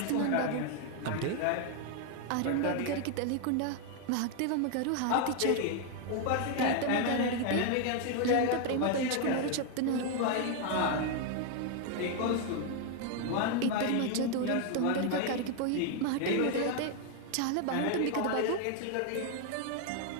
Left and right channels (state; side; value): different; both; correlation 0.00